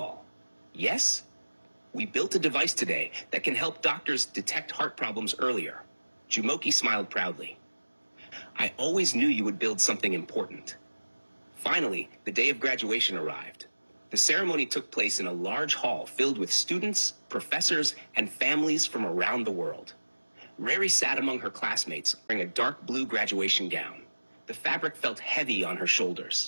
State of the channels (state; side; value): inverted; both; correlation -1.00